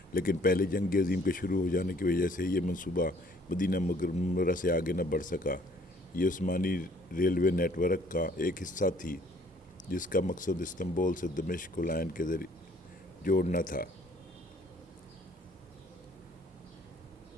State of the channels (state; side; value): normal; both; correlation 0.59